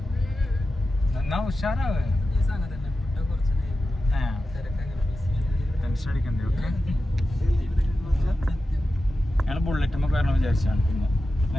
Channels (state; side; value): normal; both; correlation 0.92